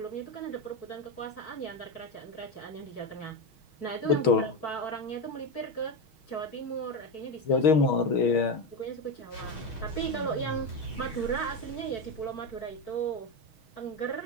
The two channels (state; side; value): late; right; 6.3 ms